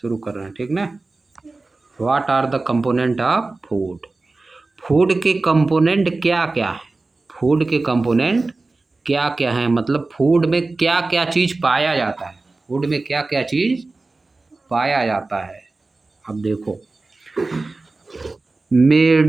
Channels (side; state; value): left; quieter; 3.4 dB